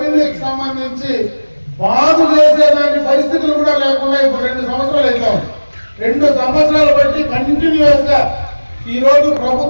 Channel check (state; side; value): inverted; both; correlation -1.00